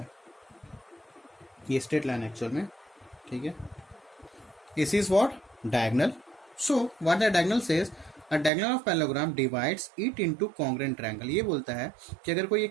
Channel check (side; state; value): left; drops out; at 8.5 s